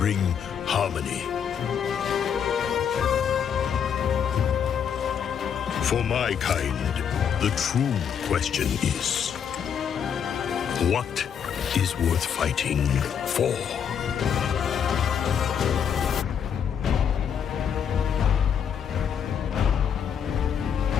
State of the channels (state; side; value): quieter; right; 7.9 dB